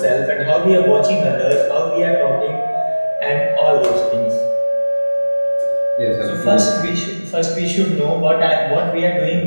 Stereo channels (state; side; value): inverted; both; correlation -1.00